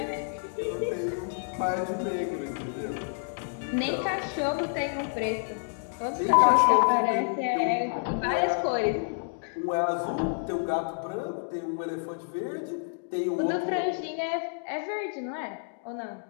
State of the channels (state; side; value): silent; right; digital silence